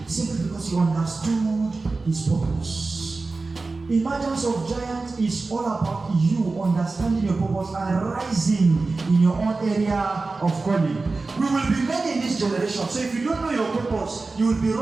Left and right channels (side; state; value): left; quieter; 3.7 dB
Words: simply because he understood his purpose. Emergence of Giants is all about you understanding your purpose and rising in your own area of calling. We will be many in this generation. So if you don't know your purpose, you will be